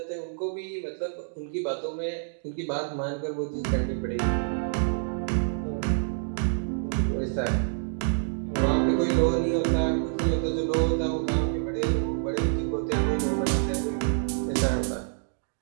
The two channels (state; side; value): silent; left; digital silence